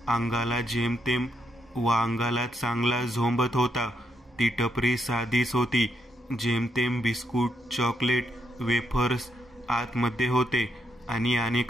अंगाला जेमतेम व अंगाला चांगला झोंबत होता. ती टपरी साधीच होती. जेमतेम बिस्कुट, चॉकलेट, वेफर्स आतमध्ये होते आणि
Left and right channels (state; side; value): normal; both; correlation 0.78